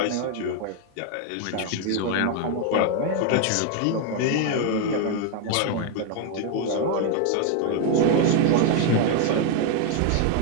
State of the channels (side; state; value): both; different; correlation 0.01